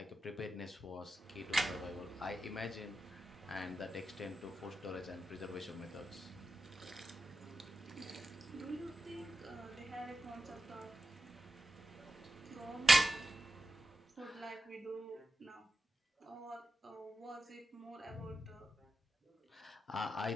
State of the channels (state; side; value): normal; both; correlation 0.90